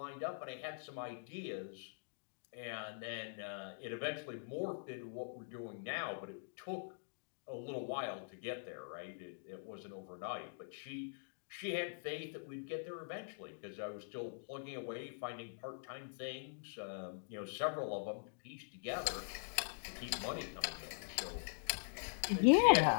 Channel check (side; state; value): right; silent; digital silence